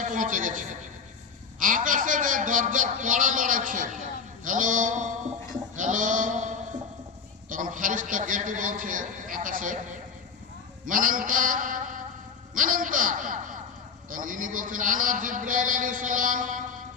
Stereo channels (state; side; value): quieter; right; 5.9 dB